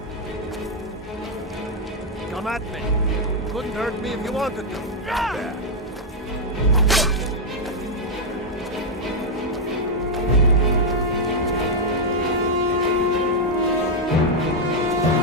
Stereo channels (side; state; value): both; normal; correlation -0.01